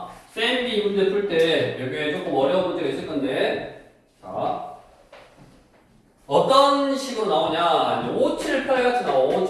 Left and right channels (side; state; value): both; identical; correlation 1.00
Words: 쌤이 문제 풀 때 여기에 조금 어려운 문제가 있을 건데 자 어떤 식으로 나오냐 5, 7, 8 같이 나와 5,